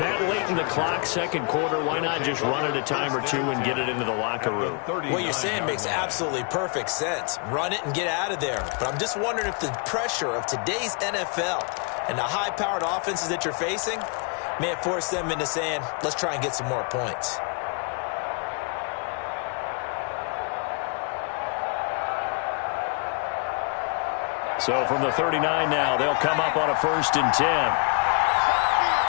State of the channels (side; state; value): right; quieter; 36.9 dB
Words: late in the clock, second quarter. Why not just run it a time or two and get it into the locker room? What you're saying makes absolutely perfect sense. Run it and get out of there. But I'm just wondering if the pressure of today's NFL and the high-powered offenses that you're facing may have forced them into saying, let's try and get some more points. So from the 39 now, they'll come up on a 1st and 10.